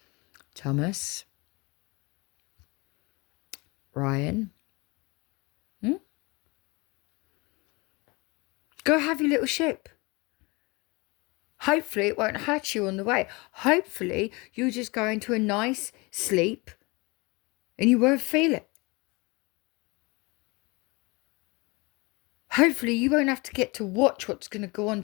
Thomas, Ryan, go have your little ship. Hopefully it won't hurt you on the way. Hopefully you'll just go into a nice sleep and you won't feel it. Hopefully you won't have to get to watch what's going to go on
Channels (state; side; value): quieter; right; 26.2 dB